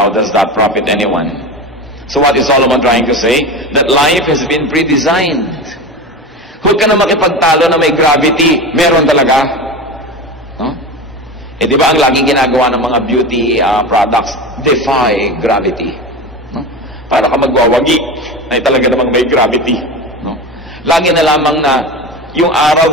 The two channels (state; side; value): normal; both; correlation 0.27